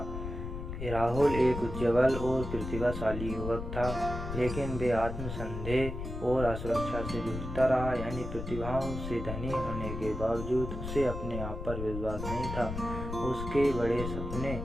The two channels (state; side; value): noise; left; rumble, 6 dB below the sound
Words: राहुल एक उज्ज्वल और प्रतिभाशाली युवक था, लेकिन वे आत्मसंदेह और असुरक्षा से जूझता रहा। यानी प्रतिभाओं से धनी होने के बावजूद उसे अपने आप पर विश्वास नहीं था। उसके बड़े सपने